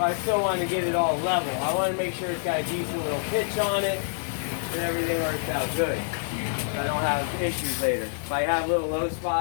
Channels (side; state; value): right; silent; digital silence